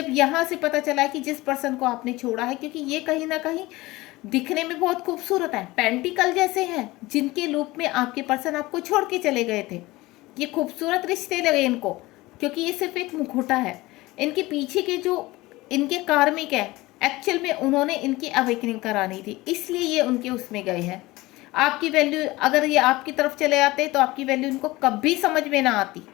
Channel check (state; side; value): quieter; right; 20.0 dB